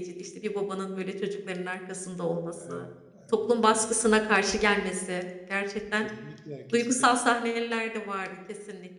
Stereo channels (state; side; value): identical; both; correlation 1.00